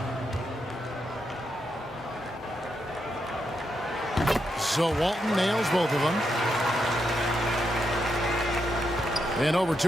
So Walton nails both of them. And over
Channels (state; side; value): normal; both; correlation 0.82